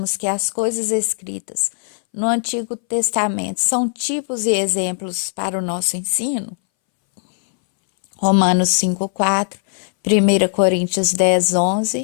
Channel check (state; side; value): silent; right; 64 dB below the other